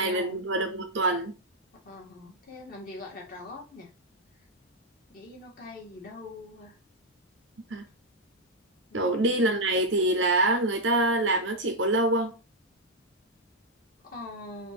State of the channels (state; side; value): normal; both; correlation -0.02